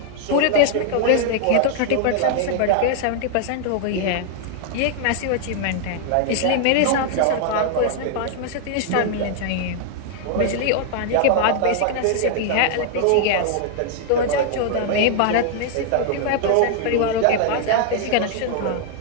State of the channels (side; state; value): both; different; correlation 0.00